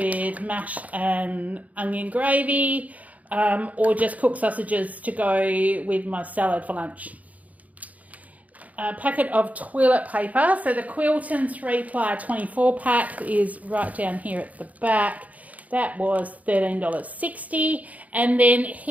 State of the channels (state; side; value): late; left; 0.072 ms